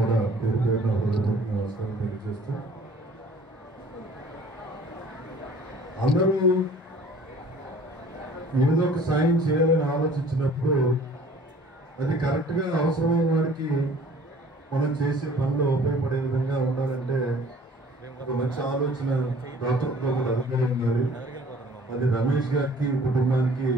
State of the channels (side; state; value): both; normal; correlation 0.51